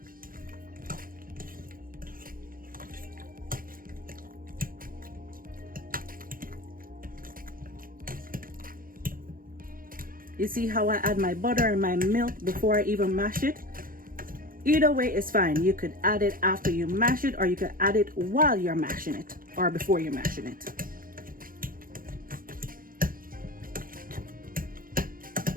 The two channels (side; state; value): left; late; 0.41 ms